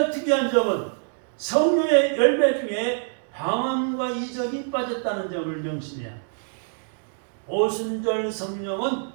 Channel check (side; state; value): left; silent; digital silence